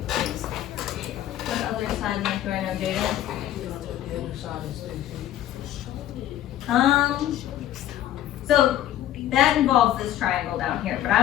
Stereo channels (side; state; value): right; quieter; 12.5 dB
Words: What other side length do I know, Jaden? So that involves this triangle down here, but